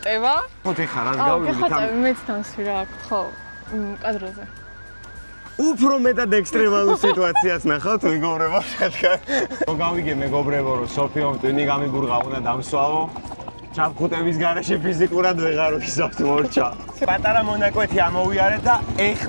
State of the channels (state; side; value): inverted; both; correlation -1.00